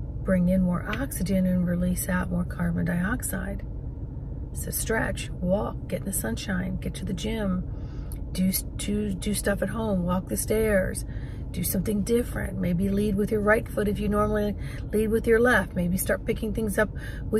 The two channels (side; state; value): both; identical; correlation 1.00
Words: bring in more oxygen and release out more carbon dioxide. So stretch, walk, get in the sunshine, get to the gym, do stuff at home, walk the stairs, do something different. Maybe lead with your right foot if you normally lead with your left. Maybe start picking things up